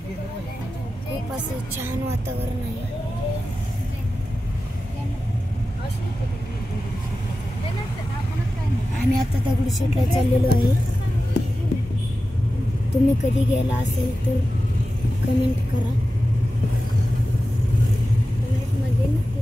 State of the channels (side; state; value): both; normal; correlation 0.94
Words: गेलं पाहिजे. खूप असं छान वातावरण आहे. आम्ही आता दगडूशेठला चाललेलो आहे. तुम्ही कधी गेला असेल तर कमेंट करा. कमेंटमध्ये नक्की